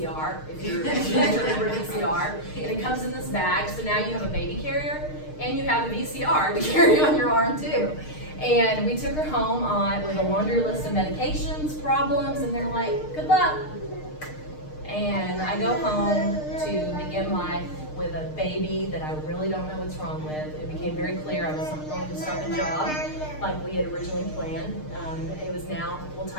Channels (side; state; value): right; late; 6.5 ms